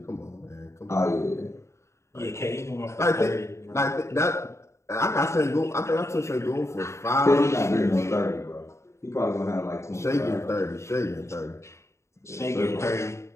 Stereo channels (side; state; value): right; late; 0.14 ms